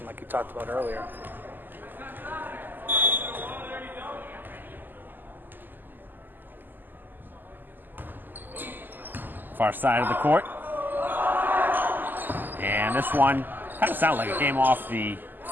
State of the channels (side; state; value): left; late; 0.089 ms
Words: like you talked about earlier. Far side of the court. And this one kind of sounded like it came off the